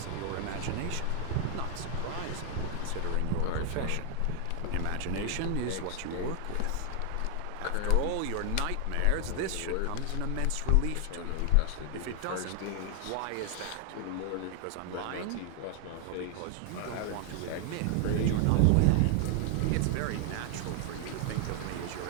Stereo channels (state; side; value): different; both; correlation 0.00